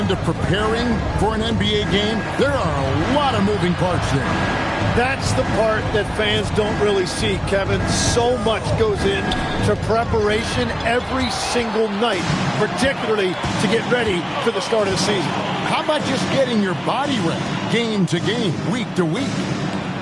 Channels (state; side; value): identical; both; correlation 1.00